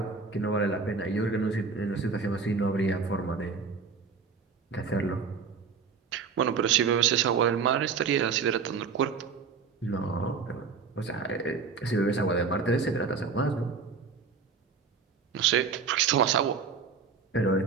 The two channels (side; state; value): left; quieter; 5.3 dB